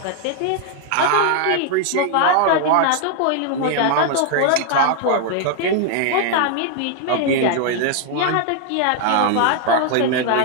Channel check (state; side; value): different; both; correlation 0.00